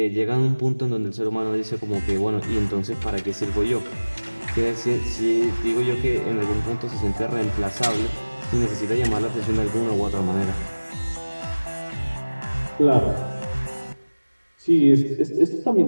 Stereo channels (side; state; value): both; inverted; correlation -1.00